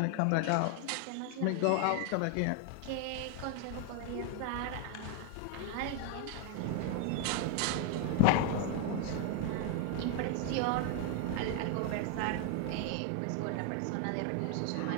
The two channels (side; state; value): both; different; correlation 0.00